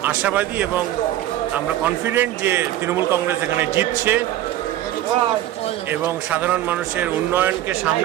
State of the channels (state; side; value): quieter; left; 13.5 dB